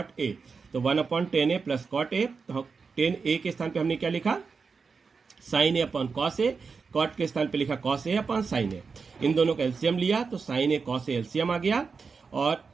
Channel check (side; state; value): left; quieter; 5.1 dB